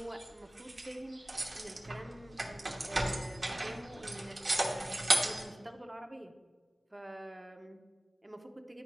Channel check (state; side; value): normal; both; correlation 0.98